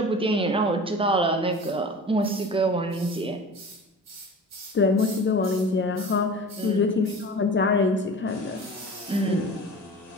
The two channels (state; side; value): normal; both; correlation 0.37